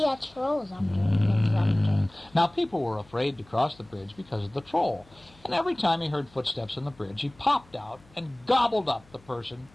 a troll's under. Now, people were afraid to cross the bridge because of the troll. And every time he heard footsteps on the bridge, he popped out and gobbled up the person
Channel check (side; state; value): left; noise; hum, 28 dB below the sound